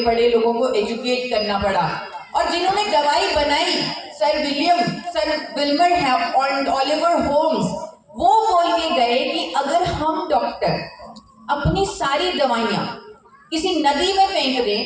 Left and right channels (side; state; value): both; identical; correlation 1.00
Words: पड़े, लोगों को एजुकेट करना पड़ा। और जिन्होंने दवाई बनाई, सर विल्मर और ओलिवर होम्स, वो बोल के गए कि अगर हम डॉक्टर अपनी सारी दवाइयां किसी नदी में फेंक